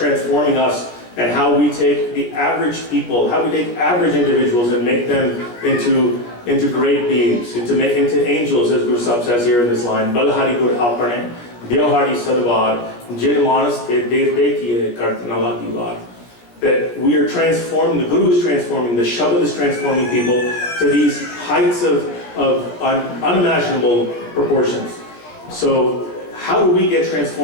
us and how we take the average people, how we take average individuals and make them into great beings, into angels, as Guru Sahib says here in this line. Balhari Gur Apane, Dyahari Sadvar, Jin Manas Te Devte Kiye Kartanala Diwan. That we are transforming, the Guru is transforming, the Shabad is transforming people to these heights of unimaginable proportions. So how do we get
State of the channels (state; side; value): late; right; 17 ms